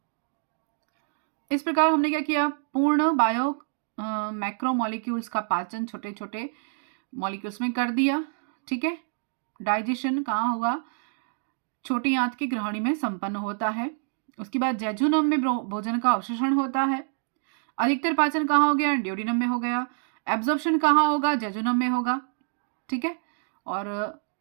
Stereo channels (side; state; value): left; silent; digital silence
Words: इस प्रकार हमने क्या किया? पूर्ण बायो मैक्रोमोलिक्यूल्स का पाचन छोटे छोटे मॉलिक्यूल्स में कर दिया। ठीक है, डाइजेशन कहाँ होगा? छोटी आंत की ग्रहणी में संपन्न होता है। उसके बाद जेजुनम में भोजन का अवशोषण होता है। अधिकतर पाचन कहाँ हो गया? ड्यूडिनम में हो गया। एब्जॉर्प्शन कहाँ होगा? जेजुनम में होगा। ठीक है, और